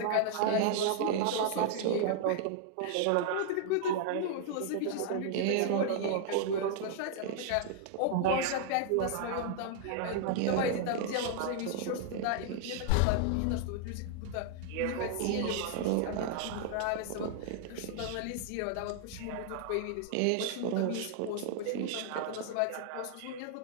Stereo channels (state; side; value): different; both; correlation 0.00